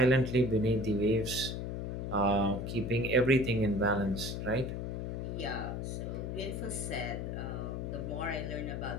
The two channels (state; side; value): noise; left; hum, 4 dB below the sound